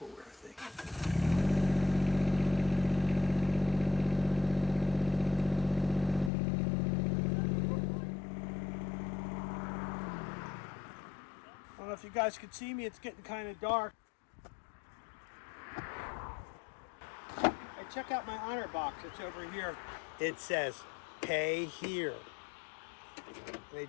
thing. I don't know if you guys can see me, it's getting kind of dark. Hey, check out my honor box, it's over here. It says, pay here. And they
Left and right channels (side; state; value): right; drops out; at 6.3 s